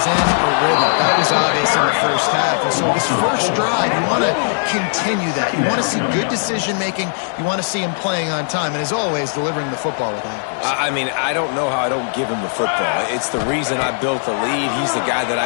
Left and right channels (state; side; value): silent; right; digital silence